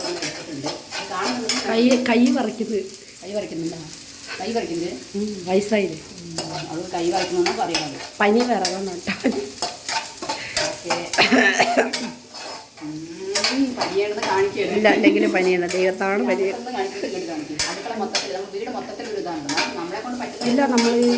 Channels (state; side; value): identical; both; correlation 1.00